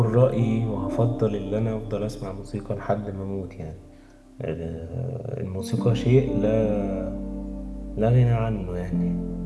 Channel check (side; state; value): both; identical; correlation 1.00